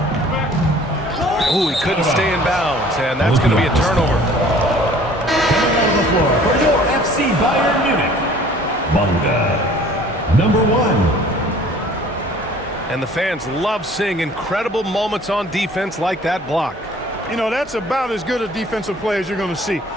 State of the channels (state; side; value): normal; both; correlation 0.52